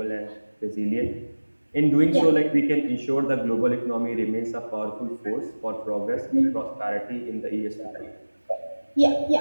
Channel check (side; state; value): both; inverted; correlation -1.00